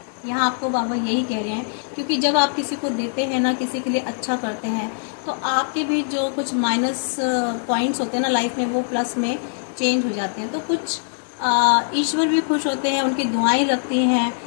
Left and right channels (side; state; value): right; silent; 57 dB below the other